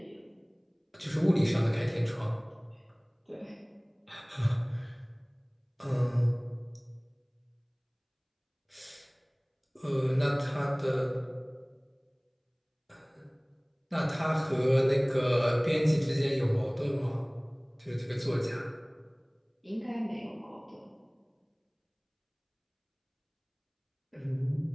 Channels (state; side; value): identical; both; correlation 1.00